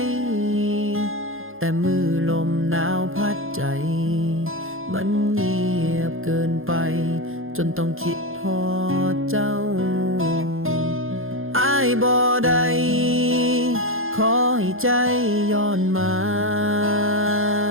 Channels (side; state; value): left; late; 0.60 ms